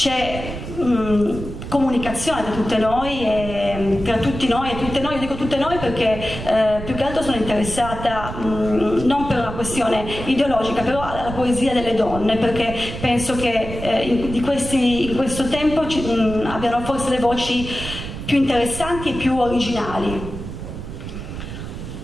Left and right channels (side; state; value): right; noise; rumble, 9 dB below the sound